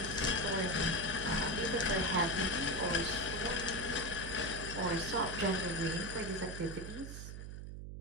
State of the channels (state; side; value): noise; right; hum, 8 dB below the sound